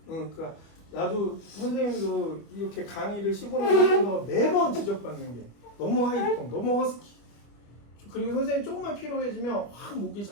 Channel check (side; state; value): right; late; 25 ms